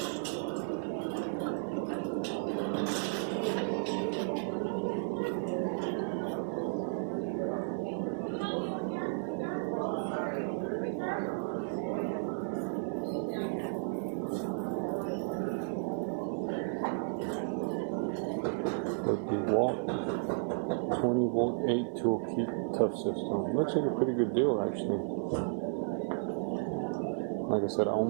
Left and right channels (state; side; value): silent; left; 55 dB below the other